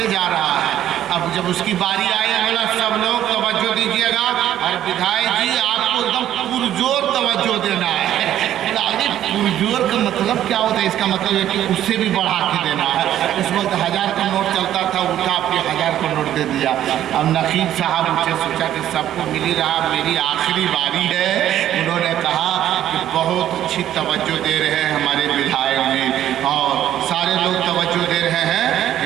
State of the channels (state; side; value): quieter; left; 11.7 dB